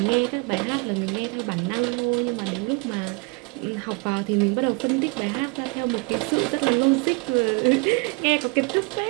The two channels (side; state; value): left; quieter; 29.6 dB